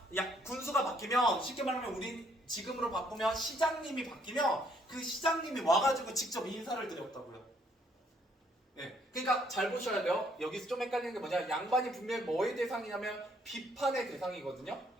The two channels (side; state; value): both; normal; correlation 0.67